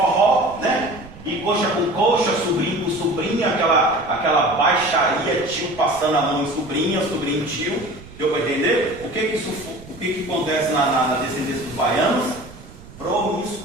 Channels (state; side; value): noise; right; rumble, 19 dB below the sound